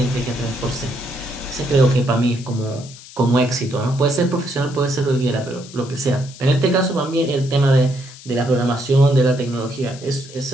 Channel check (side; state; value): left; noise; hiss, 18 dB below the sound